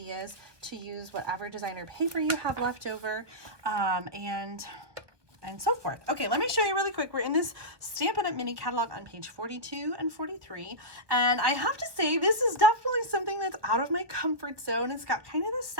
to use whatever designer paper you have left over, and so forth. Okay, let me show you really quick. We're in this Stampin' Up! Mini catalog on page 42 and 43. And I have to say, this is definitely something that's out of my comfort zone. It's got kind of the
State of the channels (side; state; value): left; late; 1.5 ms